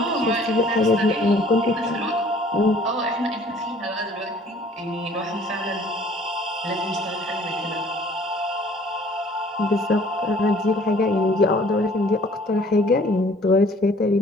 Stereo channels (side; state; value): both; normal; correlation 0.55